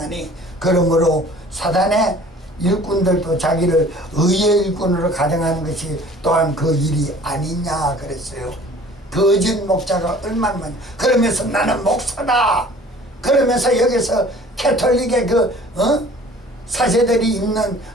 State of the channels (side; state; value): both; normal; correlation 0.49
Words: 그러므로 사단의 일꾼들도 자기를 의의 일꾼으로 가정하는 것이 또한 그 일이 아니냐 그랬어요. 거짓 목자가 얼마나 많이. 그러면서 나는 목사다. 그러면서 여기서 캐톨릭의 사제들이 입는